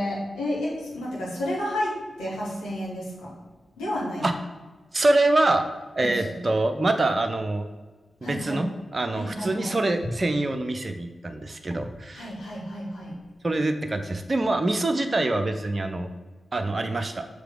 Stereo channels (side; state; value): both; normal; correlation 0.94